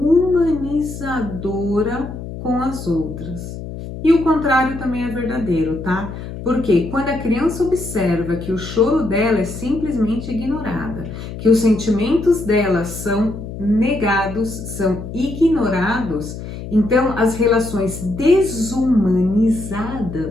com as outras. E o contrário também é verdadeiro, tá? Porque quando a criança observa que o choro dela é simplesmente ignorada, que os sentimentos dela são negados, são ignorados, então as relações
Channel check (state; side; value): noise; left; hum, 9 dB below the sound